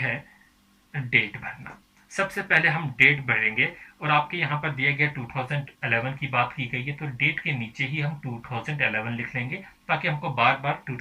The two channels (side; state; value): both; identical; correlation 1.00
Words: डेट भरना। सबसे पहले हम डेट भरेंगे, और आपके यहाँ पर दिया गया 2011 की बात की गई है, तो डेट के नीचे ही हम 2011 लिख लेंगे, ताकि हमको बार बार